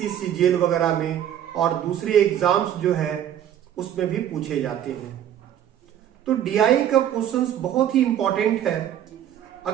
सीजीएल वगैरह में और दूसरे एग्जाम्स जो है उसमें भी पूछे जाते हैं। तो डीआई का क्वेश्चंस बहुत ही इंपॉर्टेंट है।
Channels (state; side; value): quieter; left; 10.5 dB